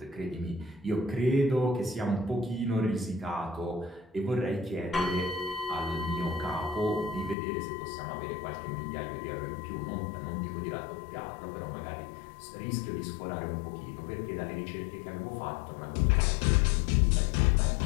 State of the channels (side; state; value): right; drops out; at 7.4 s